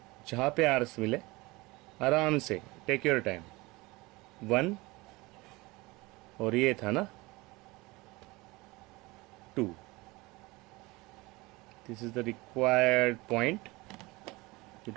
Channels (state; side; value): quieter; left; 22.8 dB